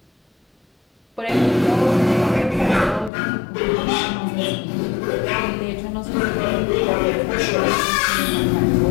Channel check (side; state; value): right; drops out; at 3.1 s